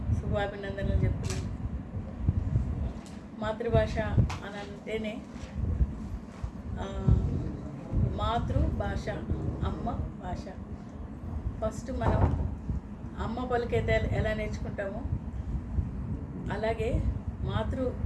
శుభాభినందనలు చెప్తున్నాను. మాతృభాష అని అంటేనే మాతృభాష, అమ్మ భాష. ఫస్ట్ మనం అమ్మ పలికైతే ఎలా నేర్చుకుంటామో అలాగే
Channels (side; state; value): both; identical; correlation 1.00